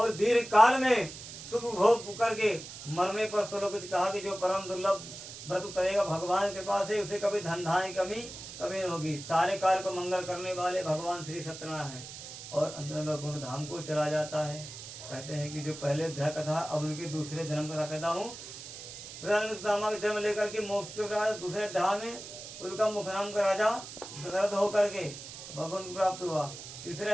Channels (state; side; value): noise; right; hiss, 12 dB below the sound